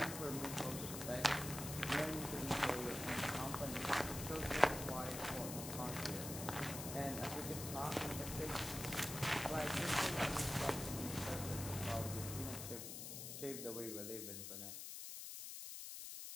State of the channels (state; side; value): noise; left; hiss, 7 dB below the sound